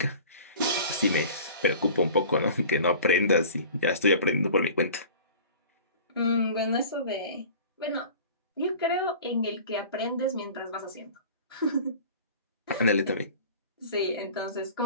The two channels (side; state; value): both; inverted; correlation -0.42